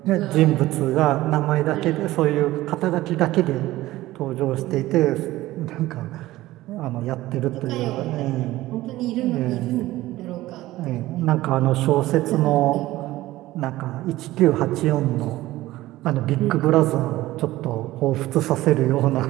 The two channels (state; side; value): quieter; left; 16.7 dB